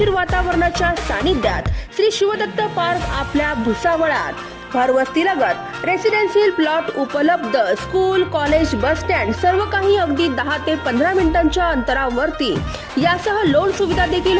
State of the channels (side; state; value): both; identical; correlation 1.00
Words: वातावरणाच्या सानिध्यात श्री शिवदत्त पार्क आपल्या भुसावळात। घरवस्तीलगत रेसिडेन्शियल प्लॉट उपलब्ध। स्कूल, कॉलेज, बस स्टँड सर्व काही अगदी 10 ते 15 मिनिटांच्या अंतरावरती। यासह लोन सुविधा देखील